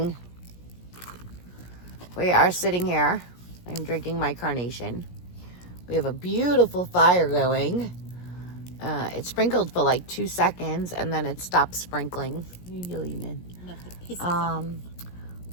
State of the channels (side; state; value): right; late; 17 ms